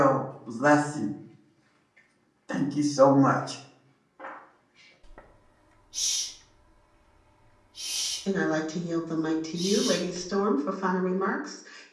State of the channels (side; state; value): both; identical; correlation 1.00